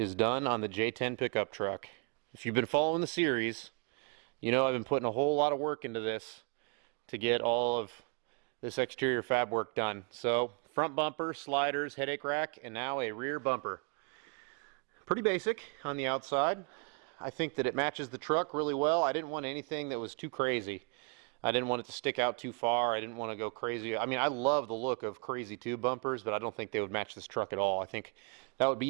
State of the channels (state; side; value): quieter; left; 35.8 dB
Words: done on the J10 pickup truck. If you've been following the series, you know I've been putting a whole lot of work into this to get all of this exterior fab work done. So front bumper, sliders, headache rack, and now a rear bumper. Pretty basic on the outside. I think that it matches the truck really well. I didn't want anything that was too crazy. I didn't want it to stick out too far. I didn't want to go crazy. I mean, I love the look of crazy tube bumpers, but I don't think they would match this truck at all. I think that would